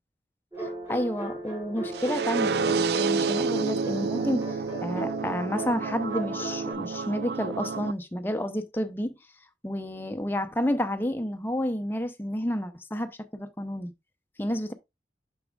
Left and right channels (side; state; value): both; normal; correlation 0.56